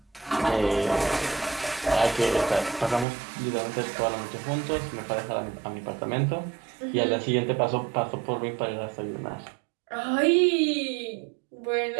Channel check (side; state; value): left; drops out; at 3.1 s